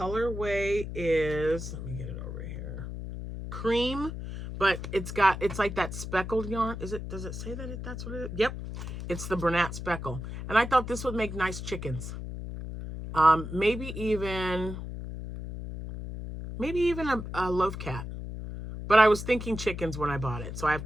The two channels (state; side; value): noise; left; hum, 7 dB below the sound